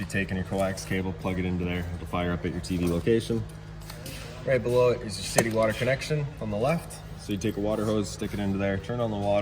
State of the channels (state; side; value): identical; both; correlation 1.00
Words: taking your coax cable, plug it into there, it'll fire up at your TV location. Right below it is your city water connection on the left. So you take a water hose, stick it into there, turn on the